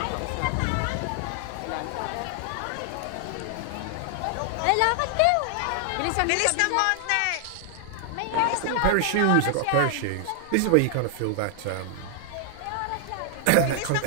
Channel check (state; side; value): different; both; correlation 0.00